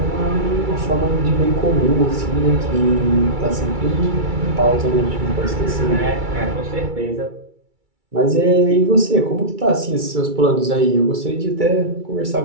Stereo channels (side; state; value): left; late; 2.3 ms